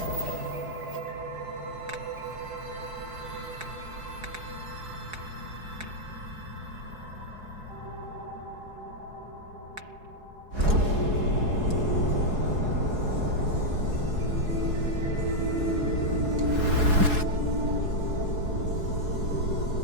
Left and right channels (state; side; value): late; left; 4.7 ms